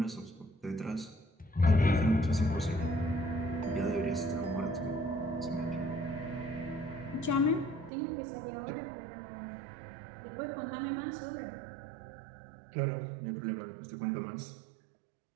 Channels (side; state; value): left; drops out; at 7.9 s